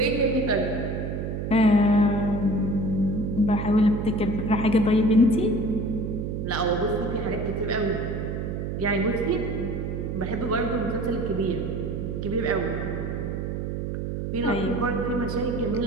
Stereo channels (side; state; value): right; noise; hum, 3 dB below the sound